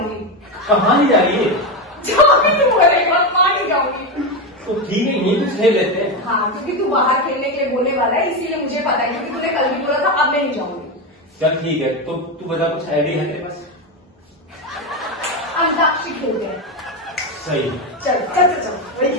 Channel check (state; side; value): normal; both; correlation 0.13